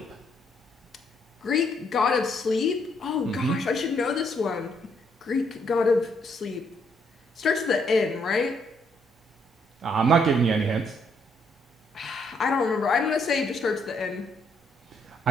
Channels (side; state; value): both; normal; correlation 0.71